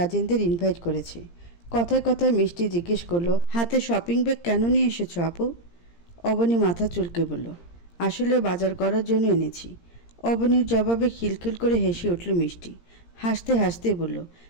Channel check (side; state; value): right; late; 17 ms